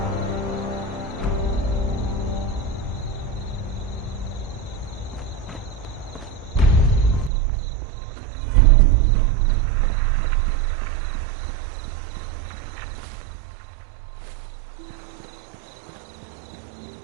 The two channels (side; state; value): left; drops out; at 7.3 s